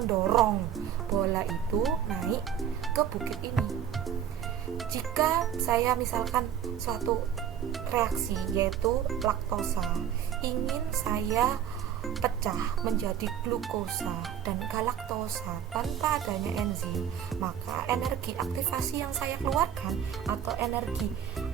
bola itu naik ke bukit ini. Jika saya misalkan suatu reaksi yaitu laktosa ingin saya pecah menjadi glukosa dan galaktosa tanpa adanya enzim, maka energi aktivasi yang saya keluarkan atau energi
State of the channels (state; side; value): quieter; left; 9.3 dB